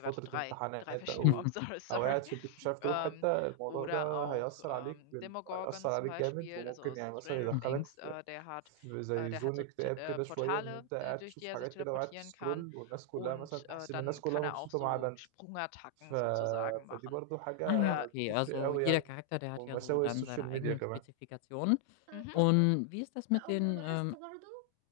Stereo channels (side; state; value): both; different; correlation 0.00